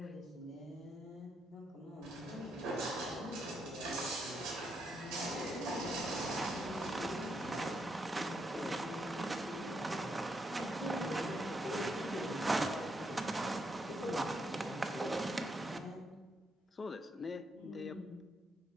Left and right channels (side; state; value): both; normal; correlation 0.79